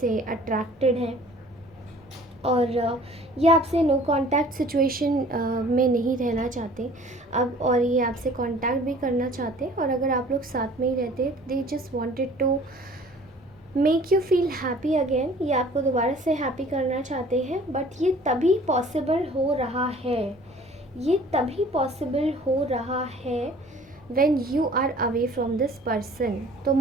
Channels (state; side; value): normal; both; correlation 0.50